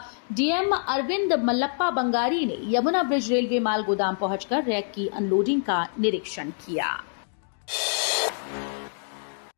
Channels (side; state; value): right; silent; digital silence